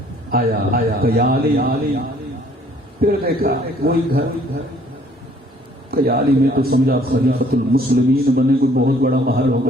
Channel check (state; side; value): normal; both; correlation 0.59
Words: آیا کہ یا علی، پھر دیکھا وہی گھر کہ یا علی، میں تو سمجھا خلیفۃ المسلمین بنے کوئی بہت بڑا محل